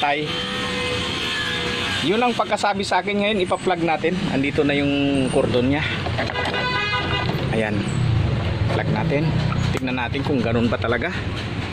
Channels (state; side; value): identical; both; correlation 1.00